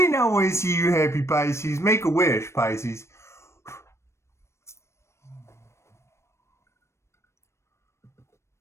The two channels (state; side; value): late; right; 0.13 ms